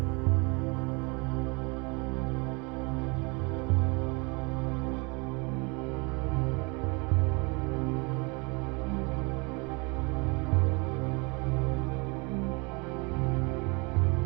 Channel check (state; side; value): quieter; left; 29.6 dB